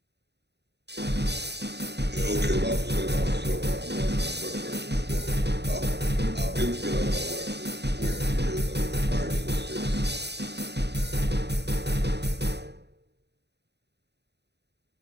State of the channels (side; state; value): left; late; 0.49 ms